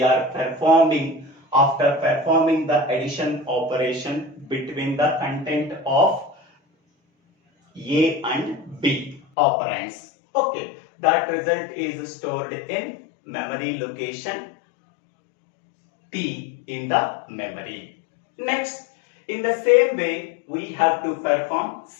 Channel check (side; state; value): right; drops out; at 9.2 s